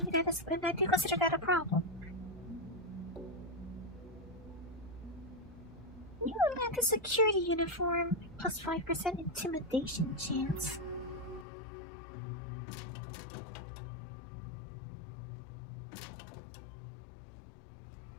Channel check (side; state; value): right; drops out; at 11.5 s